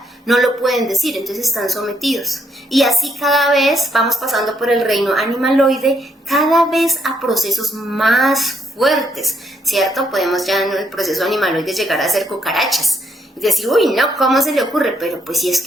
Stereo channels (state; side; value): normal; both; correlation 0.74